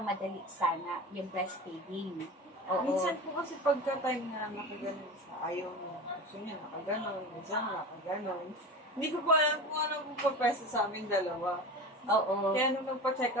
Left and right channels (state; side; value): normal; both; correlation 0.31